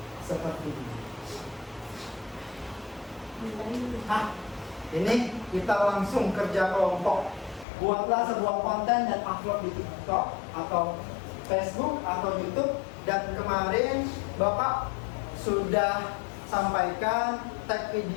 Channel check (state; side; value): drops out; right; at 7.7 s